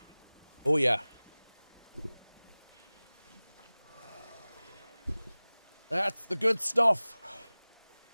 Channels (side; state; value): both; inverted; correlation -1.00